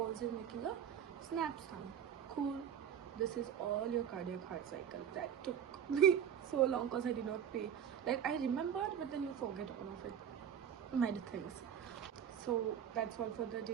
is making a snap sound. Cool. This is all your cardiac heart cycle. That took me so long because I did not pay. Like, I remembered, but then you forget all of it. Many things. So that's all for the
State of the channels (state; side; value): quieter; left; 8.8 dB